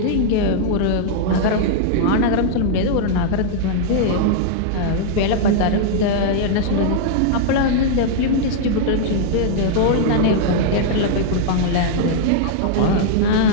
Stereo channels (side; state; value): both; different; correlation -0.01